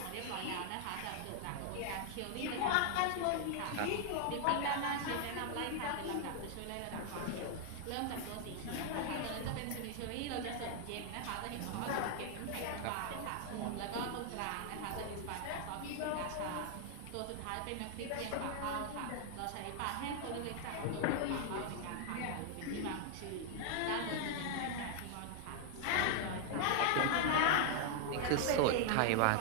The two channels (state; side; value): different; both; correlation 0.00